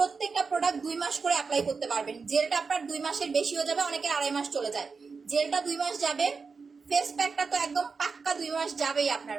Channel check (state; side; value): quieter; left; 4.9 dB